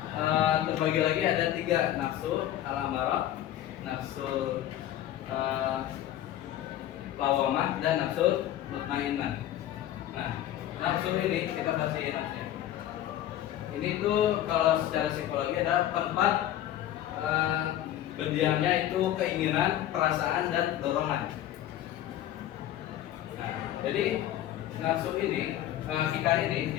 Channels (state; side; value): quieter; right; 12.4 dB